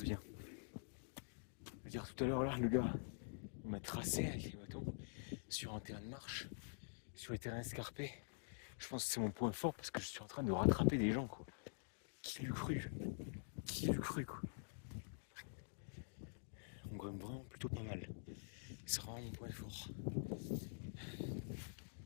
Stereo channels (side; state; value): right; silent; digital silence